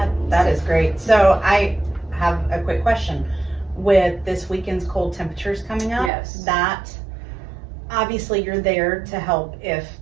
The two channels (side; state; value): left; drops out; at 6.1 s